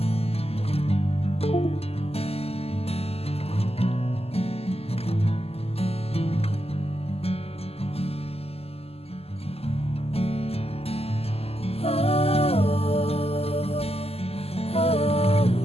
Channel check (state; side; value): late; right; 0.29 ms